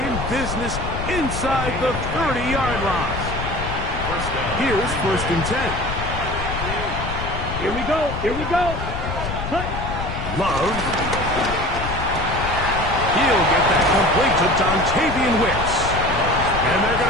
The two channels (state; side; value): noise; left; rumble, 6 dB below the sound